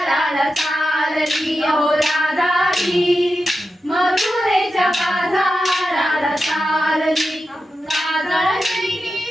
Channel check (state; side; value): normal; both; correlation 0.90